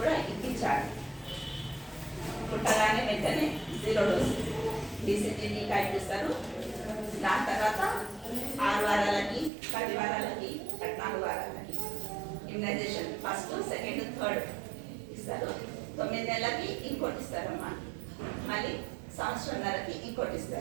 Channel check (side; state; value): left; drops out; at 9.5 s